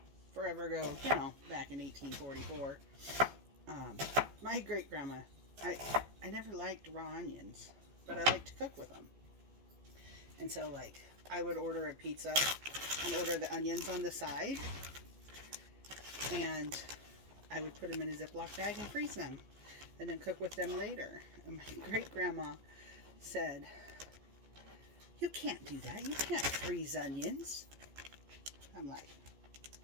forever ago, you know, back in 1844. My great grandma, I never liked raw onions, but I liked to cook with them. And so, like, I would order a pizza and order the onions on the side, and I would put them in a Ziploc bag and freeze them, and then cook with them later. And my great-grandma said, "You can't do that. You can't freeze onions." I'm like,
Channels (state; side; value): late; left; 14 ms